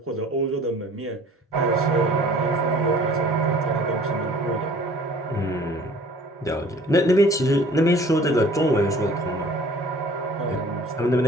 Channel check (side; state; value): both; normal; correlation 0.51